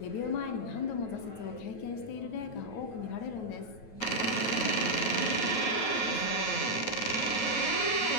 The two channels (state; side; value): late; right; 9.2 ms